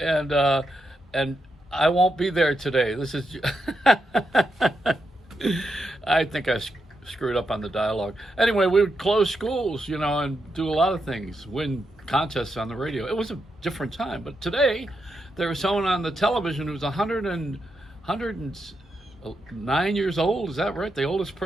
I won't be there today. This is." I think I screwed up on the dialogue. Anyway, we would close schools, and do a lot of things, win contests on the radio. It was a different time. But today, there was someone on the television who was 109 years old. Is that right? The oldest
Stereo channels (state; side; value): normal; both; correlation 0.84